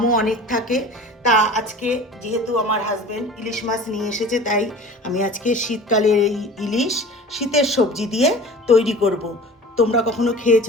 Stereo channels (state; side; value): normal; both; correlation 0.41